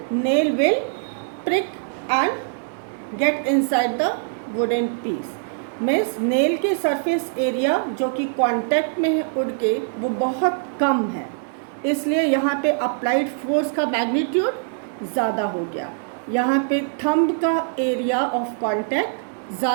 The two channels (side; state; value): left; silent; digital silence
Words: nail will prick and get inside the wooden piece. Means nail की सरफेस एरिया जो कि कांटेक्ट में है वुड के, वो बहुत कम है, इसलिए यहाँ पे अप्लाइड फोर्स का मैग्नीट्यूड ज़्यादा हो गया. यहाँ पे थंब का एरिया ऑफ कांटेक्ट